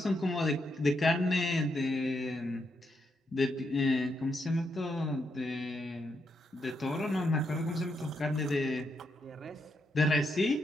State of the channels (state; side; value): normal; both; correlation 0.80